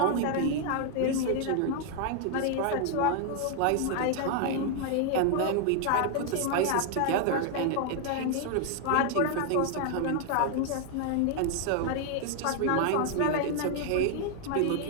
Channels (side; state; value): both; different; correlation 0.00